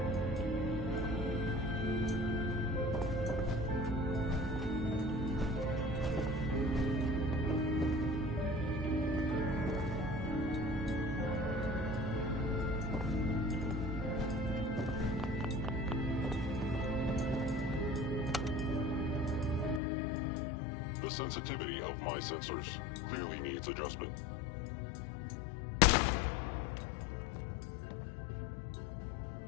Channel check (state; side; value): drops out; right; at 19.8 s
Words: sensitivity of my sensors clearly needs adjustment.